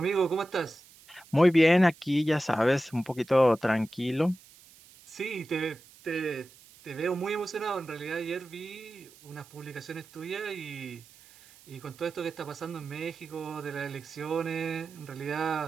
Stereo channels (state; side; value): noise; right; hiss, 24 dB below the sound